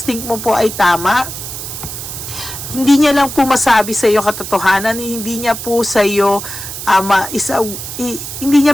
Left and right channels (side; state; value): right; noise; hiss, 8 dB below the sound